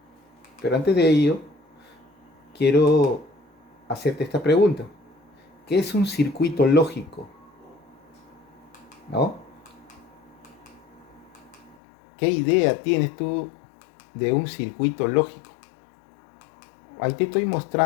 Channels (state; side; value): drops out; right; at 11.8 s